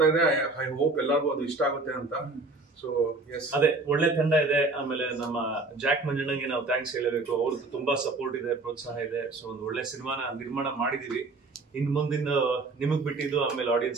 ಇದೆ, ಐ ಹೋಪ್ ಎಲ್ಲರಿಗೂ ಅದು ಇಷ್ಟ ಆಗುತ್ತೆ ಅಂತ. ಸೊ ಎಸ್, ಅದೇ ಒಳ್ಳೆ ತಂಡ ಇದೆ. ಆಮೇಲೆ ನಮ್ಮ ಜಾಕ್ ಮಂಜಣ್ಣಂಗೆ ನಾವು ಥ್ಯಾಂಕ್ಸ್ ಹೇಳಬೇಕು, ಅವ್ರದ್ದು ತುಂಬಾ ಸಪೋರ್ಟ್ ಇದೆ, ಪ್ರೋತ್ಸಾಹ ಇದೆ. ಸೊ ಒಂದು ಒಳ್ಳೆ ಸಿನಿಮಾನ ನಿರ್ಮಾಣ ಮಾಡಿದೀವಿ. ಇನ್ ಮುಂದಿನ ನಿಮಗ್ ಬಿಟ್ಟಿದ್ದು, ಆಮೇಲೆ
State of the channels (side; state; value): left; quieter; 3.4 dB